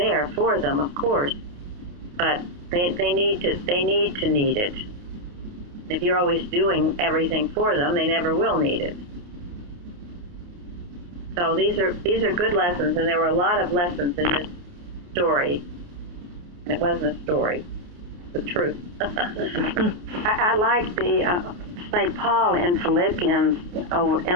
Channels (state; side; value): late; left; 28 ms